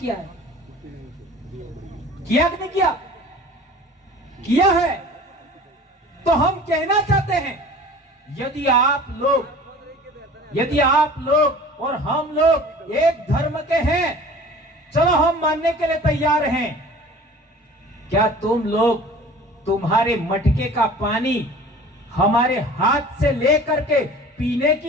है। किया कि नहीं किया? किया है। तो हम कहना चाहते हैं यदि आप लोग और हम लोग एक धर्म के हैं, चलो हम मानने के लिए तैयार हैं। क्या तुम लोग तुम्हारे मटके का पानी हमारे हाथ से लेकर के पीने की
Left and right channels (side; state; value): both; normal; correlation 0.44